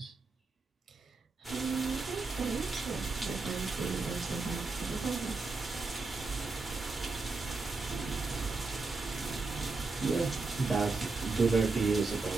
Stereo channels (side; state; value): left; quieter; 3.8 dB